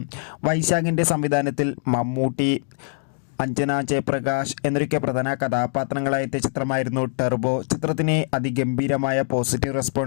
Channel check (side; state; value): right; silent; digital silence